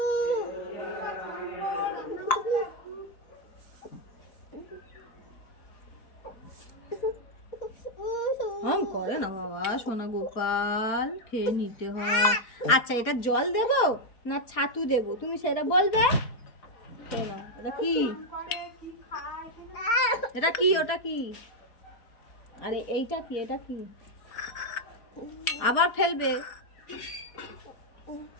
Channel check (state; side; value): late; right; 4.3 ms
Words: করে না বাবা, সোনা গোপাল খেয়ে নিতে হয়। আচ্ছা এটা জল দেব না ছাতু দেব তুমি সেটা বলবে। এটা কি? এটা কি? ওটা কি? আরে এইটা কি? এটা কি? আবার ফেলবে।